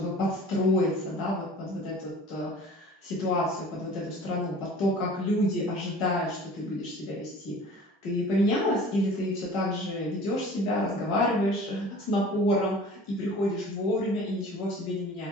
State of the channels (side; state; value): both; normal; correlation 0.44